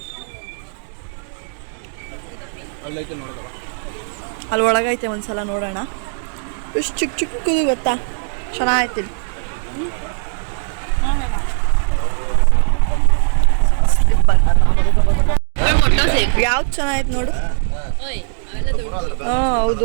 ಅಲ್ಲೈತೆ ನೋಡೋದವ, ಅಲ್ಲಿ ಒಳಗೈತೆ, ಒಂದ್ಸಲ ನೋಡೋಣ. ಎಷ್ಟು ಚಿಕ್ಕ ಚಿಕ್ಕದು ಗೊತ್ತಾ, ಚೆನ್ನಾಗೈತಿ. ಯಾವ್ದು ಚೆನ್ನಾಗೈತೆ ನೋಡು. ಹಾಂ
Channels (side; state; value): left; silent; digital silence